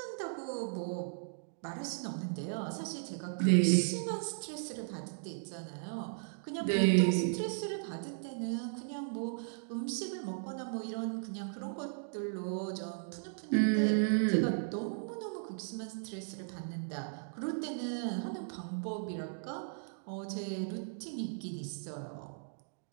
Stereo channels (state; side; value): silent; left; digital silence